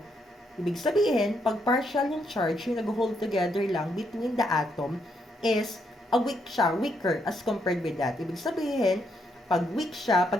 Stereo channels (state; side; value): normal; both; correlation 0.76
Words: Ibig sabihin, pag partial yung charge, yung nag-hold together lang between the atom is weaker as compared with that. Ibig sabihin, pag weak siya,